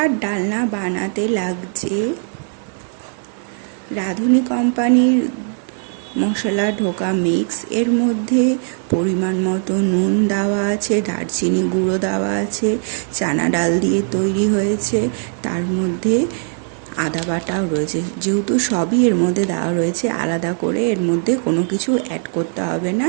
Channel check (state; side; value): silent; left; 57 dB below the other